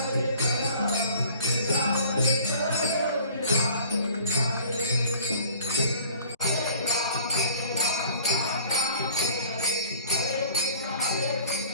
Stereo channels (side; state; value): both; inverted; correlation -0.48